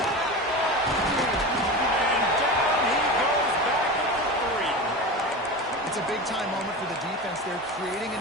And down he goes back at the 3. It's a big-time moment for the defense. They're creating a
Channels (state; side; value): normal; both; correlation 0.27